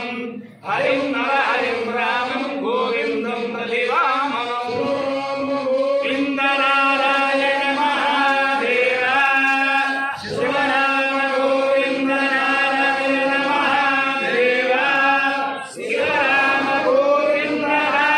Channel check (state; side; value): identical; both; correlation 1.00